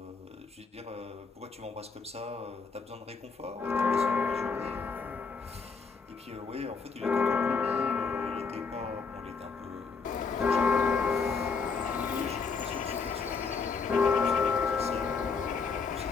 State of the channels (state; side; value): quieter; right; 4.9 dB